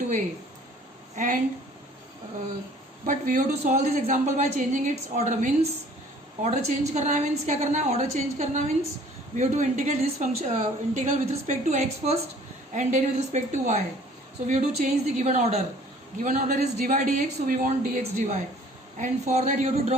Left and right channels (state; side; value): normal; both; correlation 0.53